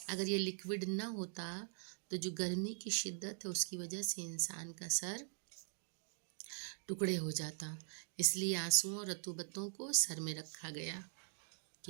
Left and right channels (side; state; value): left; silent; digital silence